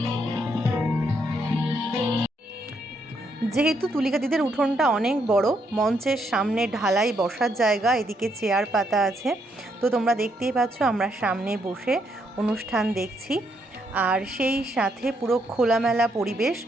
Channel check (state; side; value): normal; both; correlation 0.75